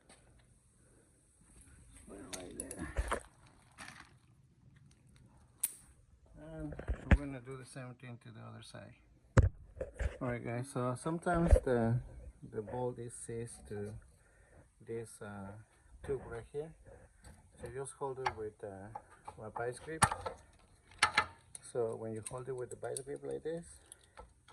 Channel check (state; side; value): identical; both; correlation 1.00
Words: Put it right there. And we're gonna do the same thing to the other side. Alright guys, so sometimes the bolt is seized to this tube right here. So just hold it with a vice grip. So when you hold it with the vice grip like this,